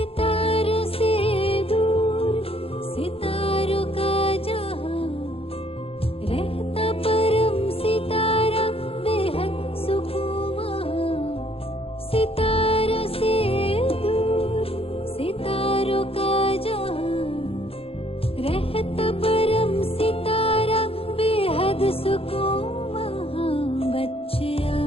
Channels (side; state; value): right; late; 0.27 ms